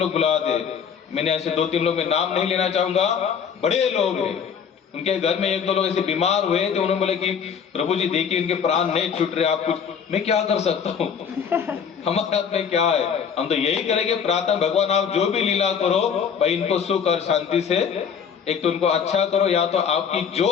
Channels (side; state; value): right; quieter; 7.1 dB